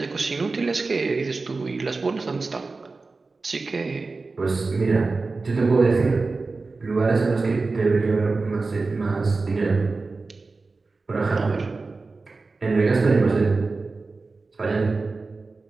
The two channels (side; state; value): left; quieter; 3.8 dB